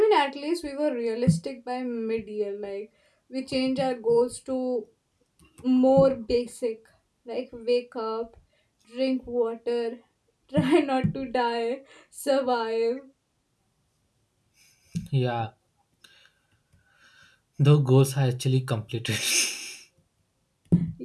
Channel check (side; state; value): both; identical; correlation 1.00